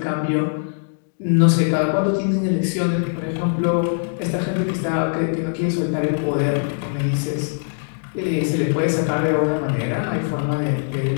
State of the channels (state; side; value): silent; right; digital silence